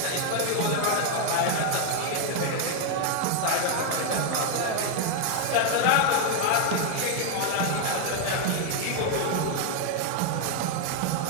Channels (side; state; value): both; different; correlation 0.01